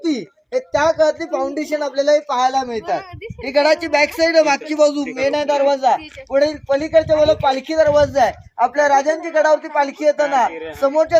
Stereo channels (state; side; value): identical; both; correlation 1.00